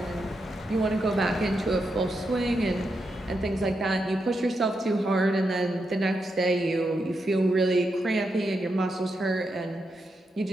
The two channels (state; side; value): normal; both; correlation 0.84